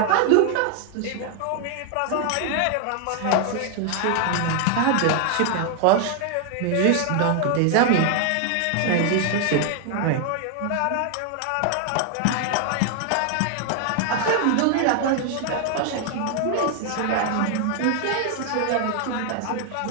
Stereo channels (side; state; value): both; different; correlation 0.00